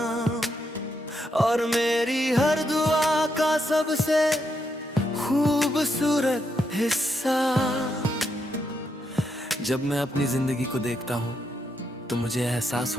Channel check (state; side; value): normal; both; correlation 0.80